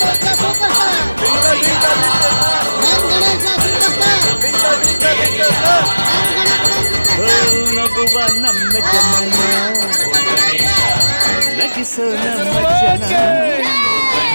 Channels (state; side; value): inverted; both; correlation -1.00